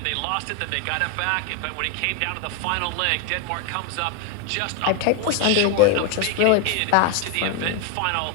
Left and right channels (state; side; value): different; both; correlation 0.01